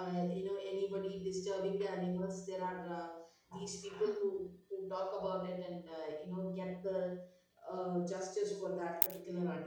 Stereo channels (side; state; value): both; identical; correlation 1.00